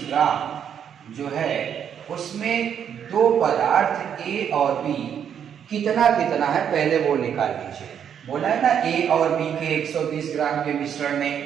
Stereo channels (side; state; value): left; quieter; 8.5 dB